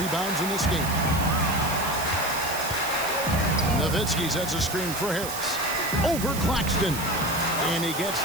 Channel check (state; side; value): noise; right; hiss, 8 dB below the sound